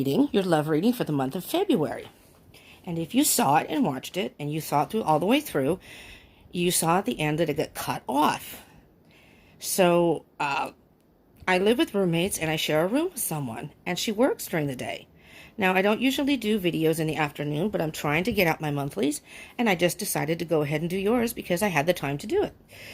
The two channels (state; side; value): identical; both; correlation 1.00